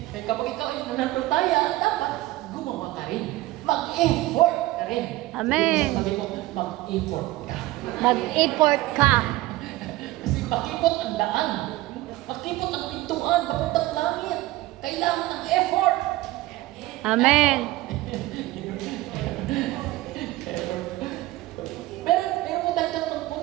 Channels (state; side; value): quieter; left; 17.8 dB